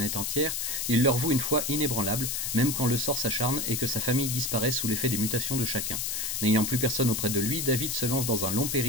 entière, il leur voue une foi inébranlable, même quand le sort s'acharne et que sa famille disparaît sous l'effet des mutations de chacun. N'ayant plus personne auprès de lui, David se lance dans un long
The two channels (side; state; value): left; noise; hiss, 1 dB below the sound